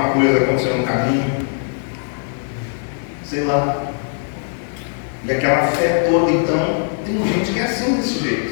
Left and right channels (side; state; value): right; silent; digital silence